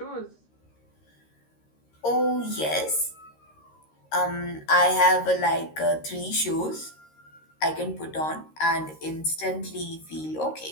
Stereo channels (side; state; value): right; late; 13 ms